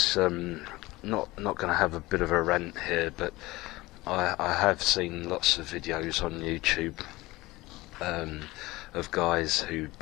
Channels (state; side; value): quieter; right; 20.0 dB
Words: not going to have a bit of a rant here, but I have seen lots of videos on YouTube of guys who